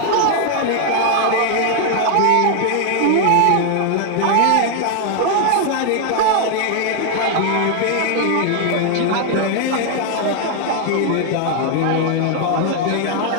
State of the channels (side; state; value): both; different; correlation 0.00